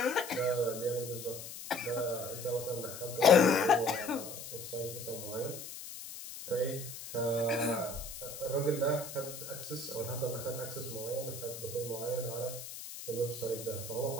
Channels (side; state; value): left; noise; hiss, 10 dB below the sound